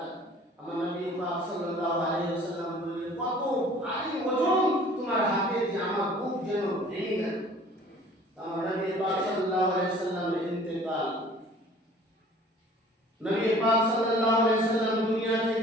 আমার নবী পাক সাল্লাল্লাহু আলাইহি ওয়াসাল্লাম বললেন, কত ভারী ওজন তোমার হাতে, যে আমার বুক যেন ভেঙে গেল। আমার নবী পাক সাল্লাল্লাহু আলাইহি ওয়াসাল্লামের ইন্তেকাল, নবী পাক সাল্লাল্লাহু আলাইহি ওয়াসাল্লাম দুনিয়া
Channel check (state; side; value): normal; both; correlation 0.50